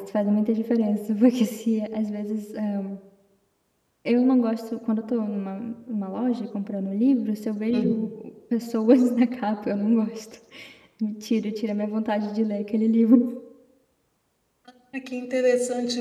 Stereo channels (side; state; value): both; identical; correlation 1.00